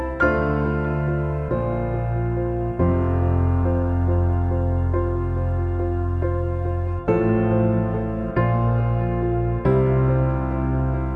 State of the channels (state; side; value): identical; both; correlation 1.00